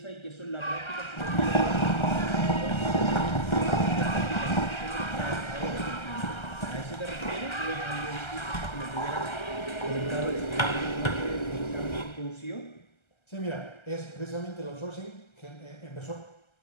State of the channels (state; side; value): late; right; 1.3 ms